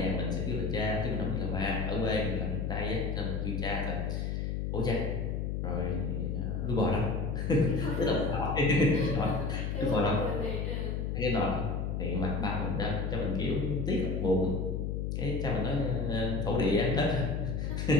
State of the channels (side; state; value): left; noise; hum, 1 dB below the sound